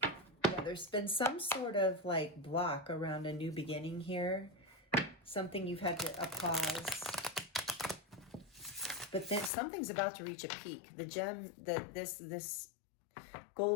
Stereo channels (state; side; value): drops out; right; at 9.5 s